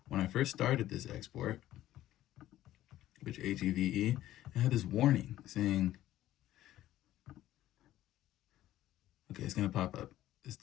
When I first started this export, which HEVE, it had this warning saying, okay, it's going to pop up. This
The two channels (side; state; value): right; quieter; 13.9 dB